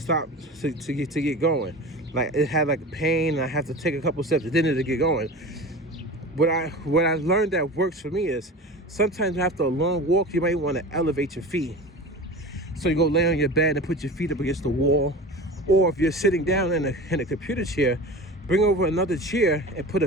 to get going. Like it had like pain, and I have to take a couple steps, and then it'll get going. What I learned that works for me is sometimes after a long walk, you might want to elevate your feet. So you go lay on your bed and put your feet up against the wall, or if you're sitting down in a computer chair, bring over another chair and put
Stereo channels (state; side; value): normal; both; correlation 0.33